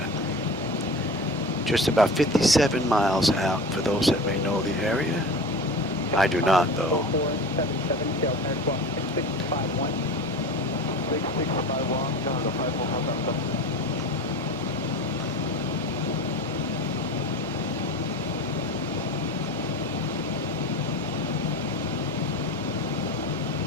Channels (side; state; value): both; normal; correlation 0.32